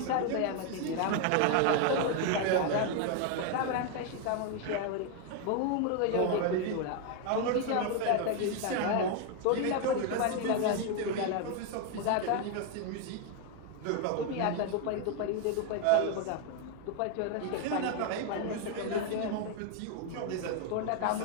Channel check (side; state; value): both; different; correlation 0.01